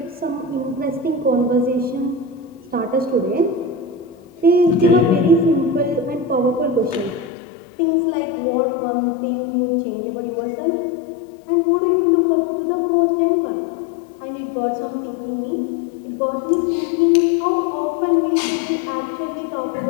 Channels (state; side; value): drops out; right; at 7.3 s